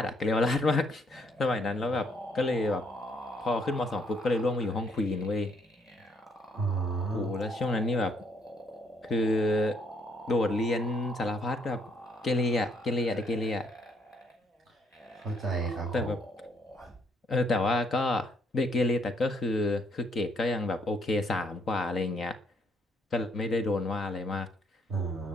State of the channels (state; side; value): normal; both; correlation 0.69